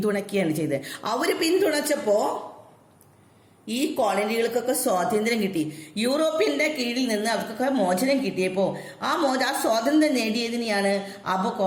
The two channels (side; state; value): both; identical; correlation 1.00